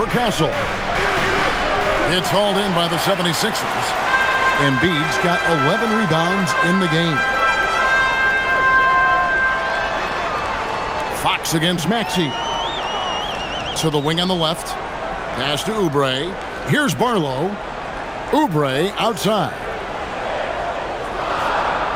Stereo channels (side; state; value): both; identical; correlation 1.00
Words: Castle. It's hauled in by the 76ers. Embiid's got 11 rebounds in the game. Fox against Maxey. To the wing on the left. Pass to Oubre. Here's Barlow. Oubre outside.